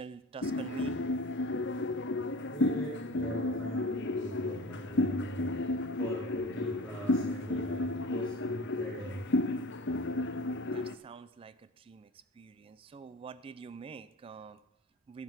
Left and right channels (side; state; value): both; normal; correlation 0.38